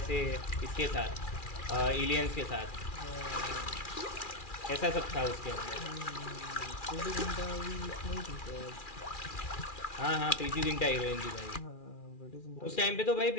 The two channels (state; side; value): late; right; 2.4 ms